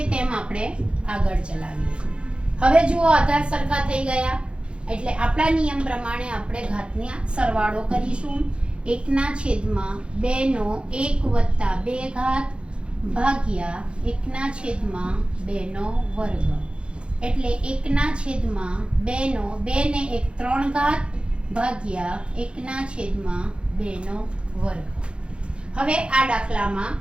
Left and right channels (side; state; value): left; late; 0.056 ms